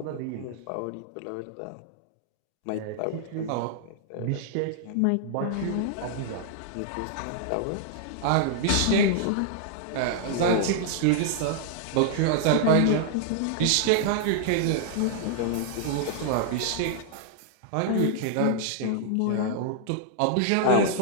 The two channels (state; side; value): different; both; correlation -0.01